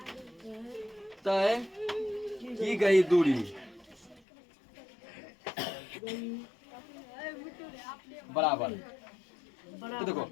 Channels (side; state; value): right; drops out; at 4.2 s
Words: तय की गई दूरी बराबर। तो देखो